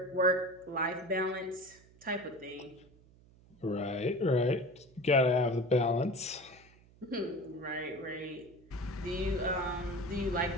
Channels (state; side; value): noise; right; hum, 26 dB below the sound